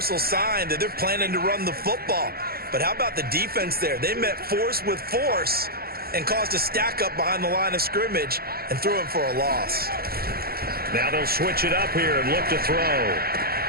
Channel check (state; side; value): late; left; 0.44 ms